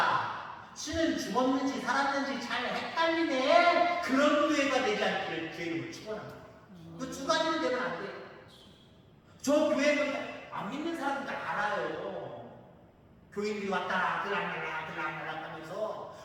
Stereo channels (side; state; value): both; identical; correlation 1.00